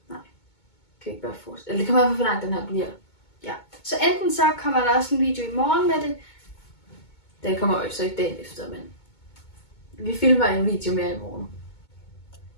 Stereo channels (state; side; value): late; right; 2.2 ms